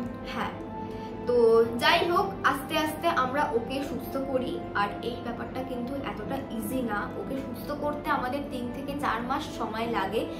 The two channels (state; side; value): identical; both; correlation 1.00